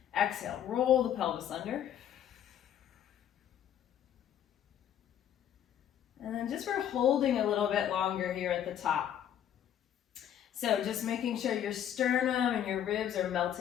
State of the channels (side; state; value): right; quieter; 10.1 dB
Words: Exhale, roll the pelvis under. And then just for holding a little bit longer here at the top. So just making sure your sternum and your ribs are